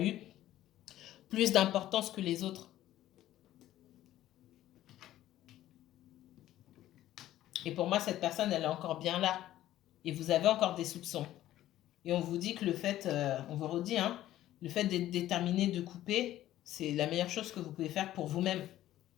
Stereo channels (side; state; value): right; quieter; 13.7 dB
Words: eu plus d'importance que les autres. Et pour moi, cette personne, elle est encore bien là. Et vous avez encore des soupçons. Et on vous dit que on vous redit, hein, le fait d'être déterminé de couper, c'est la meilleure chose que vous pouvez faire pour vous-même.